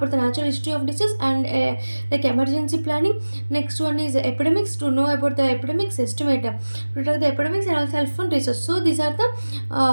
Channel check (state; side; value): inverted; both; correlation -1.00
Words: the natural history of disease and like emergency planning. Next one is epidemics, to know about the epidemics, estimate, to detect the epidemics and also helpful research. So these are